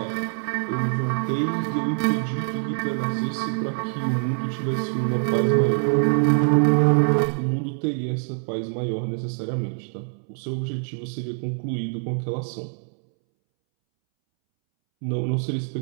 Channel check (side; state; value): left; silent; 62 dB below the other